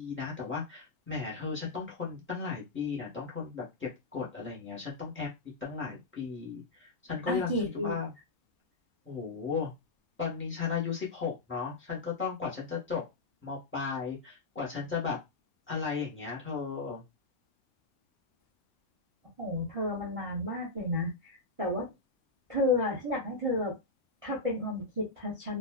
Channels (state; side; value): quieter; right; 3.3 dB